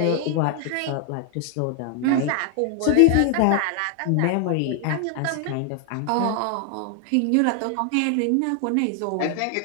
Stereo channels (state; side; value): different; both; correlation 0.00